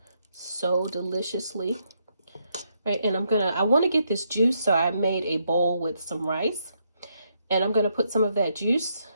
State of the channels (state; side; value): inverted; both; correlation -0.77